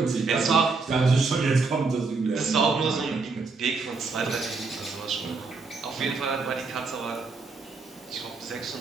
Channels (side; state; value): left; quieter; 4.2 dB